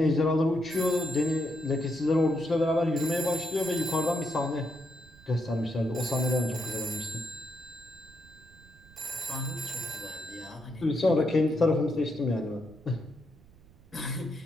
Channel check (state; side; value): noise; right; rumble, 25 dB below the sound